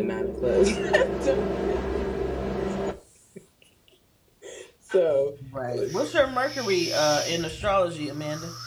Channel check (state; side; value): identical; both; correlation 1.00